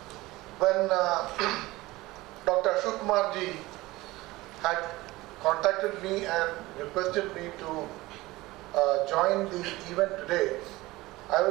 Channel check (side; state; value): left; quieter; 19.5 dB